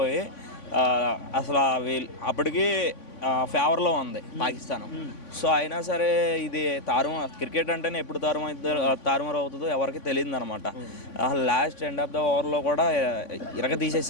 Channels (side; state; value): right; late; 3.5 ms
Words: అసలు వీళ్ళు అప్పటికి ఫేవర్లో ఉంది పాకిస్తాన్. సో అయినా సరే ఇది క్రికెట్ అంటేనే ఎప్పుడు తారుమారు అవుతుందో ఎవరికి తెలియదు అనమాట. లాస్ట్ ఎండ్ ఆఫ్ ద ఓవర్లో కూడా ఇరగ